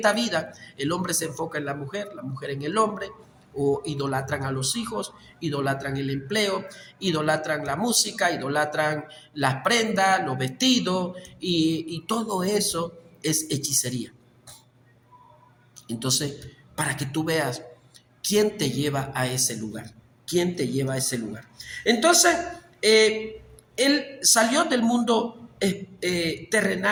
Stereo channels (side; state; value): both; identical; correlation 1.00